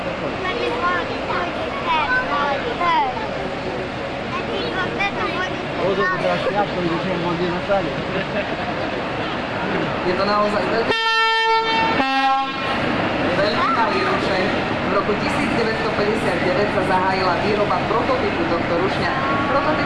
Je to naozaj veľmi malý rušeň. V roku 1959 sa zahájila výroba prototypu tohto rušňa.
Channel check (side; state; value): both; identical; correlation 1.00